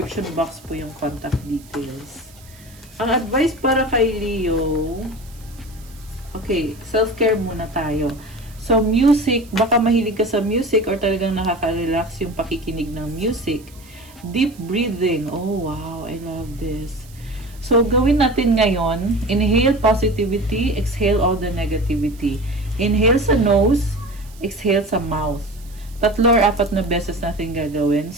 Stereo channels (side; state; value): right; noise; hiss, 24 dB below the sound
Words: box po yung contact details. Ang advice para kay Leo, okay, self-care muna tayo. So, music, baka mahilig ka sa music or talagang nakaka-relax yung pakikinig ng music. Deep breathing. Oh, wow, I love this. So, gawin natin ngayon, inhale positivity, exhale all the negativity. Inhale sa nose, exhale sa mouth. 3 or 4 na beses natin gagawin.